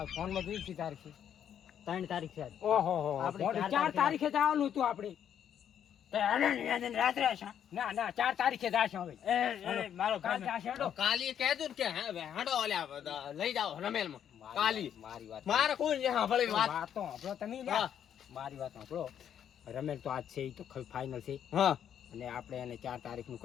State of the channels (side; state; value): right; quieter; 9.3 dB